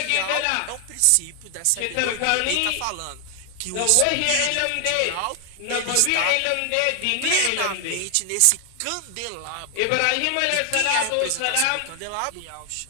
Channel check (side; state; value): both; different; correlation 0.00